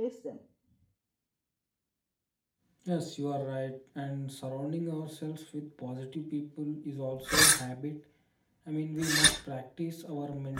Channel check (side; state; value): both; identical; correlation 1.00